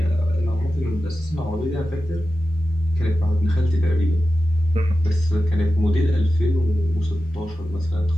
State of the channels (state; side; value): normal; both; correlation 0.93